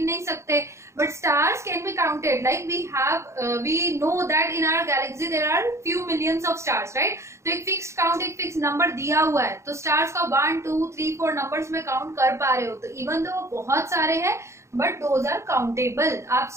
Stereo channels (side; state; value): left; late; 0.14 ms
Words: नहीं सकते, but stars can be counted. Like we know that in our galaxy there are few millions of stars. Right, तो एक फिक्स्ड काउंट, एक फिक्स नंबर दिया हुआ है. तो स्टार्स का 1 2 3 4 नंबर्स में काउंट कर पा रहे हो. तो इवन दो बहुत सारे हैं बट दोज आर काउंटेबल. आप